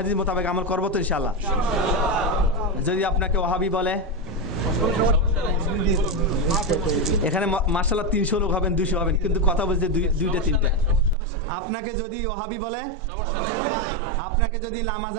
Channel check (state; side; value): drops out; left; at 11.2 s